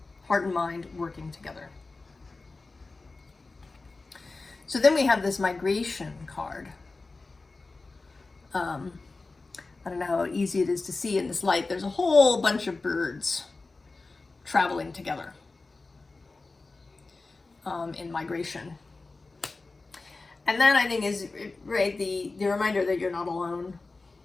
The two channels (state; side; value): quieter; right; 3.6 dB